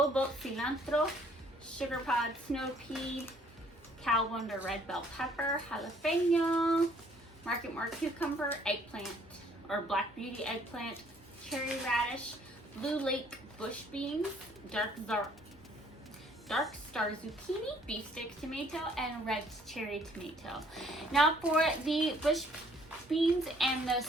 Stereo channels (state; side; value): normal; both; correlation 0.61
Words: Boat Cilantro, Sugar Pod Snow Pea, Cal Wonder Red Bell Pepper, Jalapeno, Market More Cucumber, Eggplant, or Black Beauty Eggplant, Cherry Radish, Blue Lake Bush Beans, Dark Star Zucchini, Beefsteak Tomato, and Red Cherry Tomato. Now for the bush beans and the